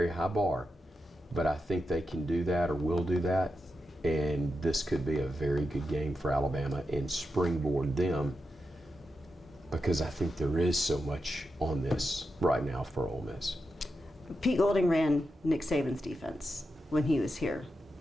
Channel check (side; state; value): both; normal; correlation 0.87